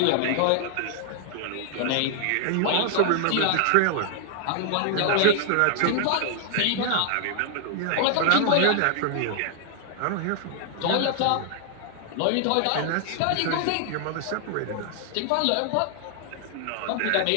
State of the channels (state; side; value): different; both; correlation 0.00